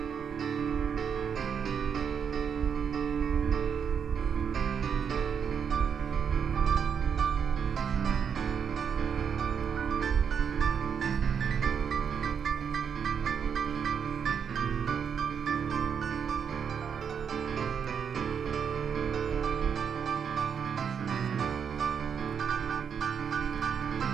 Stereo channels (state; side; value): quieter; left; 7.3 dB